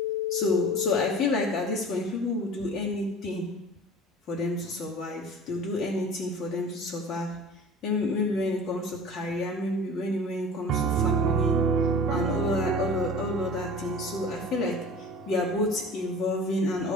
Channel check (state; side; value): normal; both; correlation 0.40